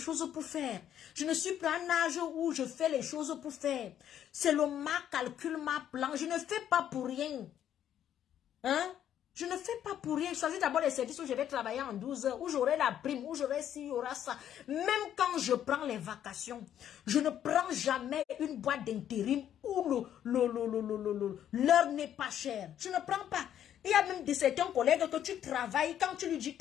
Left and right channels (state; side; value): quieter; right; 10.4 dB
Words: pour faire. Je ne suis pas à un âge où je fais les choses pour faire. C'est ma calcul, ma plan. Je ne fais pas pour rien. Hein? Je ne fais pas pour rien. Je choisis d'abord les services où je vais travailler en 12 heures, où j'aurai la prime, où j'aurai ci, il y aura ça. Même quand je prends les vacations, je ne prends jamais une boîte d'intérim où l'heure n'est pas chère. Je ne prends pas. Il y a même de certains collègues que tu travailles, quand tu lui dis